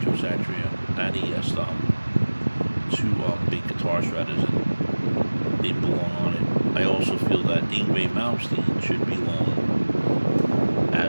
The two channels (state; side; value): inverted; both; correlation -1.00